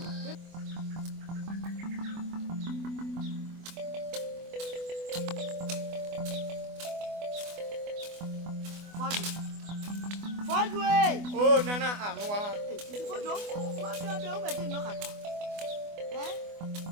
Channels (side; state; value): left; late; 24 ms